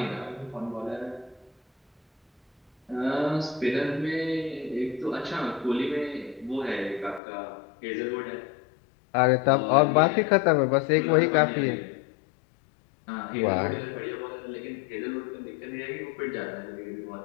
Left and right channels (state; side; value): drops out; right; at 7.2 s